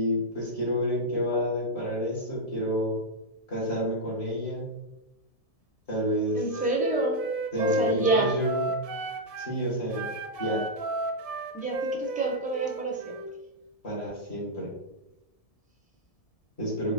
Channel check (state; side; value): late; right; 1.7 ms